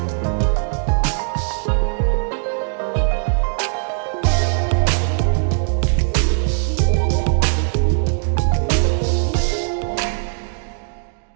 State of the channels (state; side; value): silent; left; digital silence